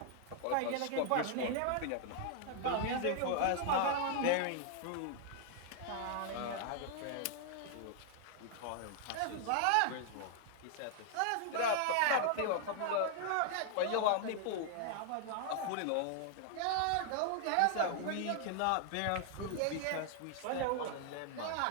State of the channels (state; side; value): different; both; correlation 0.00